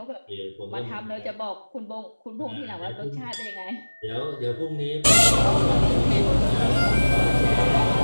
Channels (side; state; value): both; inverted; correlation -1.00